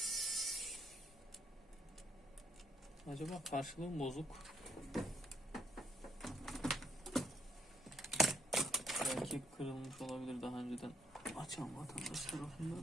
Acaba karşılığı mı bozuk? Belki kırılmış olabilir daha önceden açan vatandaş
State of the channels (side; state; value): both; normal; correlation 0.71